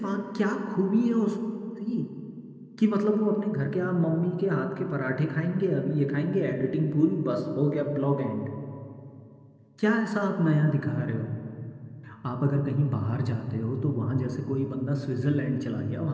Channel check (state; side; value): identical; both; correlation 1.00